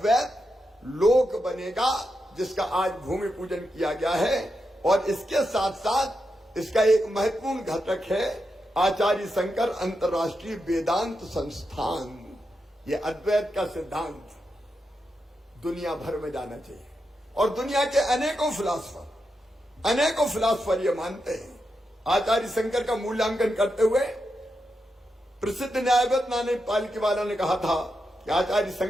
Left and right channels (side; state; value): both; normal; correlation 0.86